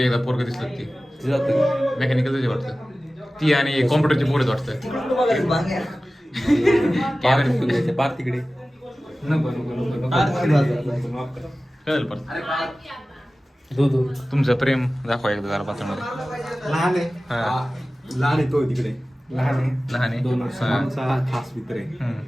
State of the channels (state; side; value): normal; both; correlation 0.96